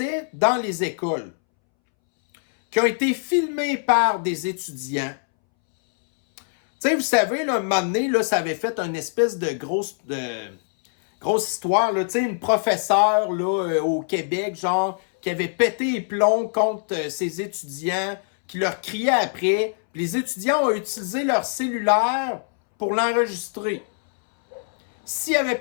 dans les écoles, qui ont été filmées par des étudiants. Tu sais, vous savez, là, un moment donné, là, ça avait fait une espèce de grosse histoire, là, tu sais, une professeure, là, au Québec, genre, qui avait pété les plombs contre ses étudiants, qui leur criait après. Puis les étudiants ont utilisé leur cellulaire pour l'enregistrer. S'il n'y avait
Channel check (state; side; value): silent; right; 63 dB below the other